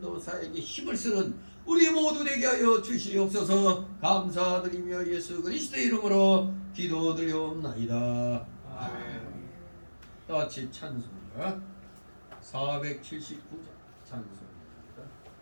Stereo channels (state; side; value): inverted; both; correlation -1.00